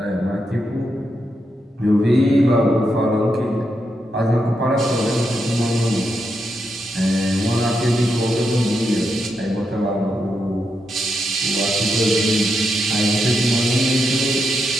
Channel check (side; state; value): both; normal; correlation 0.83